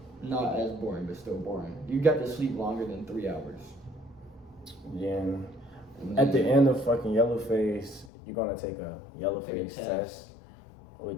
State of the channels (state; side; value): drops out; right; at 8.1 s